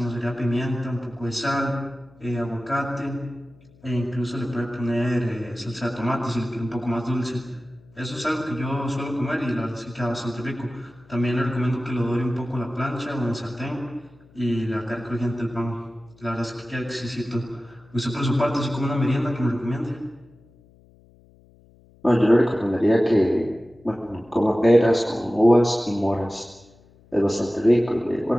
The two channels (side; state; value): left; noise; hum, 28 dB below the sound